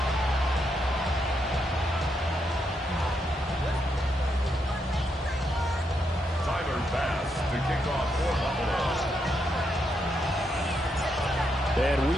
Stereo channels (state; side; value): normal; both; correlation 0.80